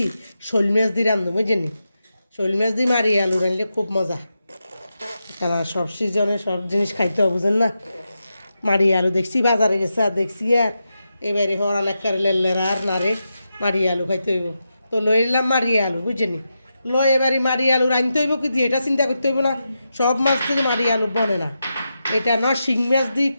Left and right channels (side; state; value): both; inverted; correlation -0.88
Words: শোল মাছ দি রান্ধুম বুঝিনি শোল মাছ দি মাড়ি আলু রানলে খুব মজা কারণ সব সিজনে সব জিনিস খাইতে হবে বুঝেন না মাড়ি আলু দেখছি বাজারে গেছে আর দেখছি আর এবারে হওয়ার অনেক লেলেরা আর নারে মাড়ি আলু খাইতে হইব তো লই এলাম মাড়ি আলু বুঝিনি লয় এবারে মাড়ি আলু রাঁধতে হইব কি দিয়ে এটা চিন্তা করতে হইব না সব মাছ থেকে মাড়ি আলু বনে না এটা না শিং মাছ দিই